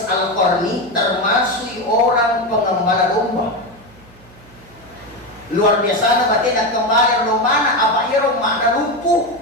Al-Qarni termasuk orang pengembala domba. Luar biasa na batin at kembali romana apa irong makna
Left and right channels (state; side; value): noise; right; hum, 24 dB below the sound